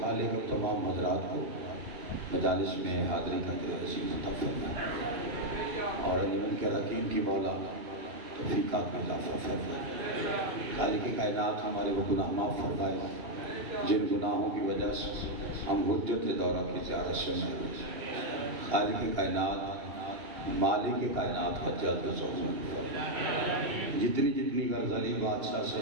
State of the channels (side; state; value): left; late; 2.8 ms